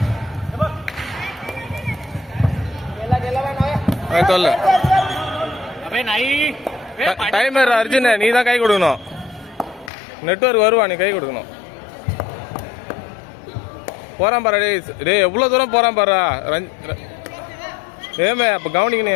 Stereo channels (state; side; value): drops out; right; at 9.9 s